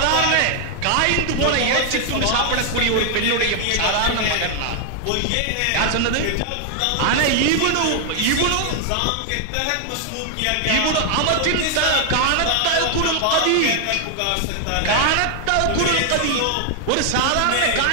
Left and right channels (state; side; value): different; both; correlation 0.00